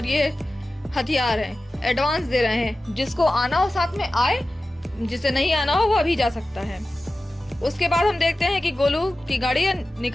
ये हथियार है, एडवांस दे रहे हैं, जिसको आना हो साथ में आए, जिसे नहीं आना हो वो अभी जा सकता है। उसके बाद हम देखते हैं कि गोलू की गाड़ी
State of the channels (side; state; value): both; normal; correlation 0.95